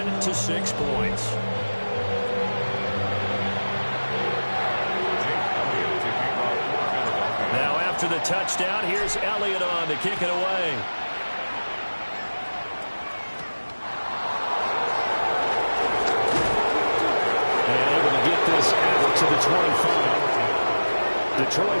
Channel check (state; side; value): inverted; both; correlation -1.00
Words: 6 points. Now after the touchdown, here's Elliott on to kick it away. And able to get this out to the 25.